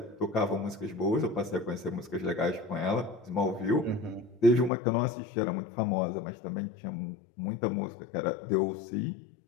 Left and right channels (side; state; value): right; drops out; at 4.7 s